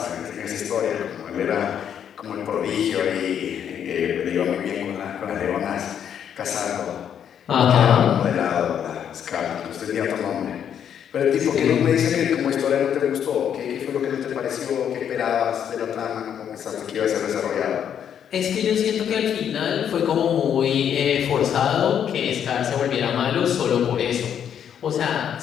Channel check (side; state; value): right; quieter; 8.8 dB